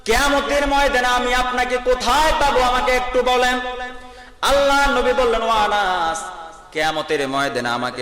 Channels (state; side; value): identical; both; correlation 1.00